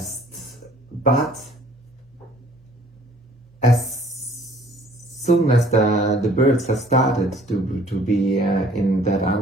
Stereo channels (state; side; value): normal; both; correlation 0.56